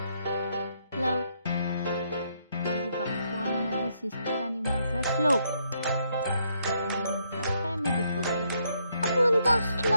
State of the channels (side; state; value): both; inverted; correlation -0.74